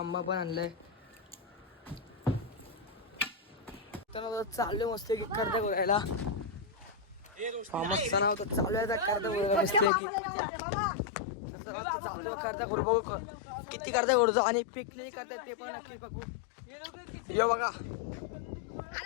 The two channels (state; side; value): drops out; right; at 9.9 s